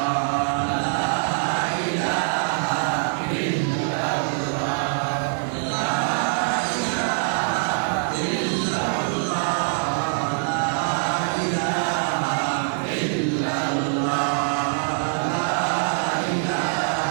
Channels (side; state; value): left; silent; digital silence